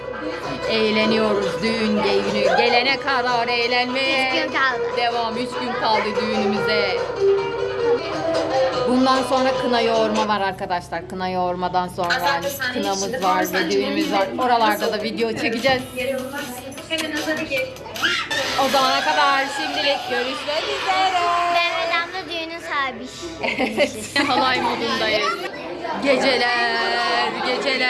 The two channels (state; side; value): identical; both; correlation 1.00